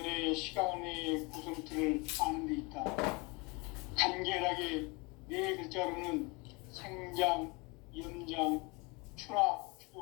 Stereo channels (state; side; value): quieter; right; 27.9 dB